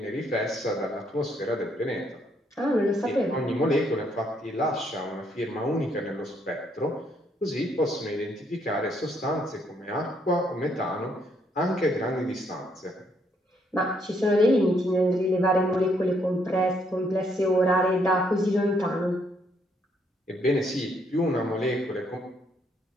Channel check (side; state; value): both; normal; correlation 0.71